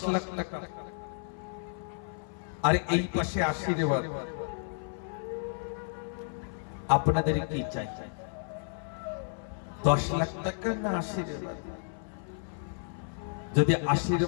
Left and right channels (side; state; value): right; silent; 57 dB below the other